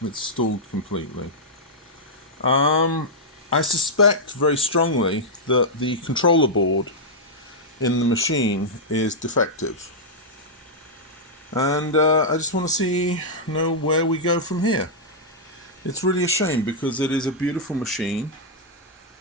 It's stalled completely. I suspect very strongly that the controller board in the machine is defective. And I just want to know where we go from here. It's really a shame, because it is a beautiful machine,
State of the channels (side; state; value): both; normal; correlation -0.07